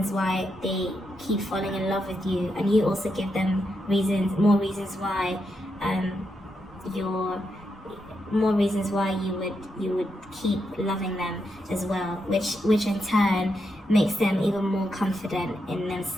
why they keep falling in love with you, and you also give them more reasons why you would keep loving them as well, which in turn makes them even more confident in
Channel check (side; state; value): both; normal; correlation 0.83